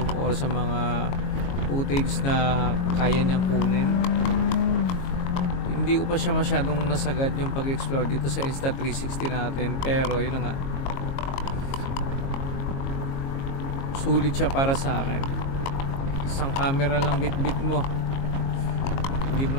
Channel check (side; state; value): right; late; 22 ms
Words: or sa mga footage na kaya niyang kunin. Hindi ko pa siya masyadong nasagad yung pag-explore dito sa Insta360 natin, pero yun na nga, sulit siya para sa akin. Isang camera lang bit-bit mo, hindi mo